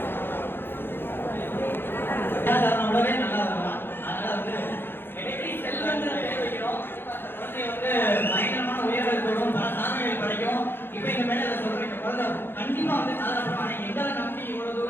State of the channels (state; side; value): late; right; 0.10 ms